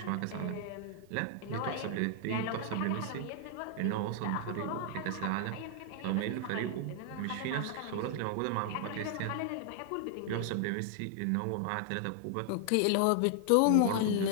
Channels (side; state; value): both; different; correlation -0.01